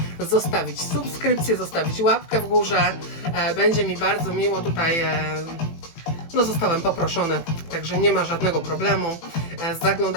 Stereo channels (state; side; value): late; right; 18 ms